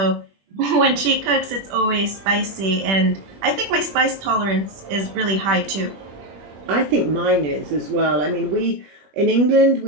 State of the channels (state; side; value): late; left; 21 ms